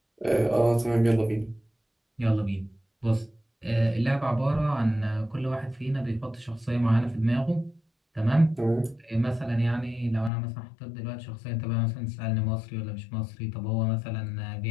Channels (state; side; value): drops out; right; at 10.3 s